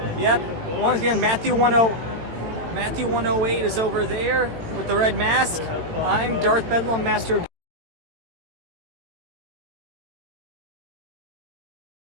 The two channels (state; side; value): late; left; 18 ms